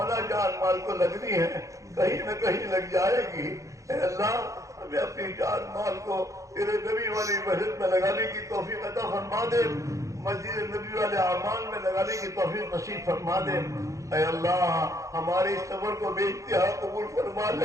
جان مال کو لگنی ہے، کہیں نہ کہیں لگ جائے گی، اے اللہ ہمیں اپنی جان مال کو تیرے نبی والی مسجد میں لگانے کی توفیق عطا فرما دے، مسجد نبی والے اعمال میں لگانے کی توفیق نصیب فرما دے۔ اے اللہ ہمارے اس سفر کو بے انتہا قبول فرما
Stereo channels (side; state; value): left; late; 0.15 ms